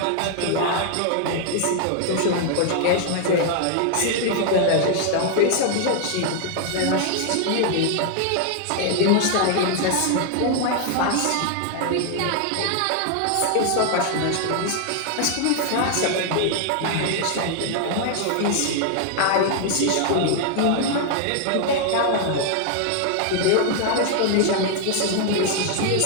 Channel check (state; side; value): different; both; correlation 0.00